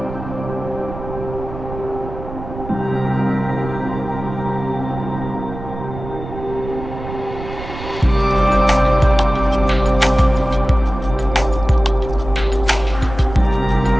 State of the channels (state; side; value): noise; right; rumble, 11 dB below the sound